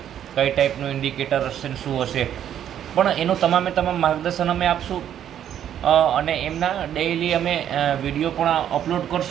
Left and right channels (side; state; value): left; quieter; 10.1 dB